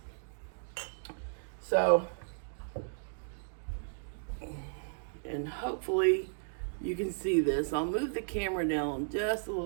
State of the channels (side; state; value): left; silent; digital silence